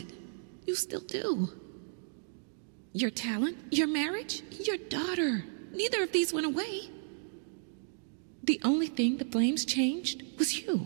You still do. Your talent, your marriage, your daughter. Neither of these went away. The only thing the flames changed was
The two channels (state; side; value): silent; left; digital silence